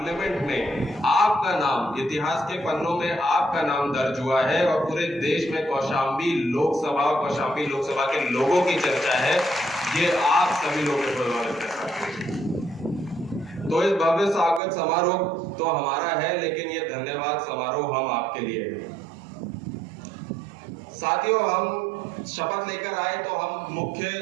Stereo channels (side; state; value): left; drops out; at 14.6 s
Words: में आपका नाम इतिहास के पन्नों में आपका नाम दर्ज हुआ है और पूरे देश में कौशाम्बी लोकसभा के लोगों की चर्चा है। ये आप सभी लोगों के बदौलत है। तो इस भव्य स्वागत समारोह तो हमारा है, लेकिन ये धन्यवाद समारोह हम आपके लिए है। साथियों, हम शपथ लेकर आए तो